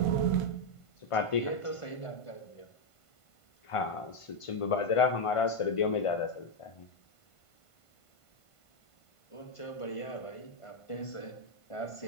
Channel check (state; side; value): late; right; 1.5 ms